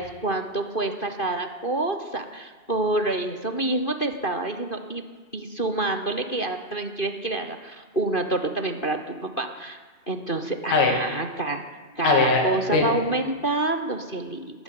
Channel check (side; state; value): right; late; 2.5 ms